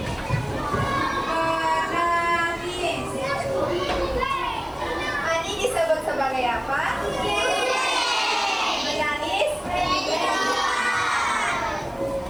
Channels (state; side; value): noise; left; hiss, 28 dB below the sound